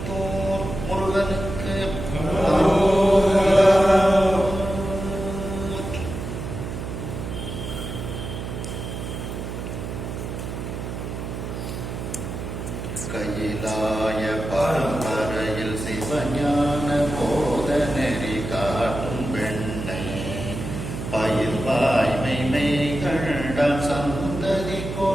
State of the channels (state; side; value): noise; right; hum, 6 dB below the sound